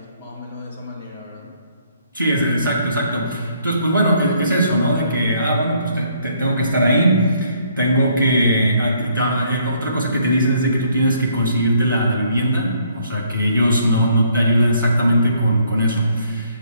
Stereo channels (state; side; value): inverted; both; correlation -0.66